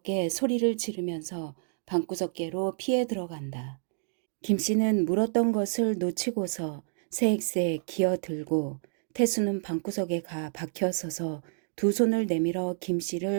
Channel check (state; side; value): silent; left; digital silence